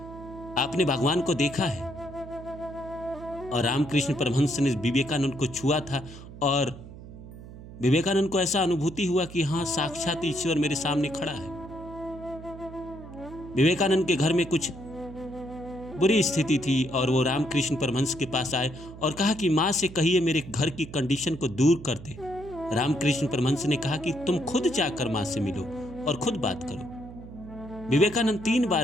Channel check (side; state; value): right; noise; hum, 15 dB below the sound